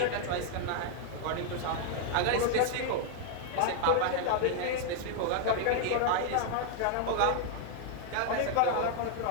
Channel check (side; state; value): both; different; correlation 0.00